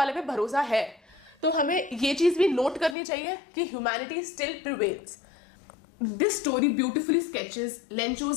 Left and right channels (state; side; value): drops out; right; at 3.0 s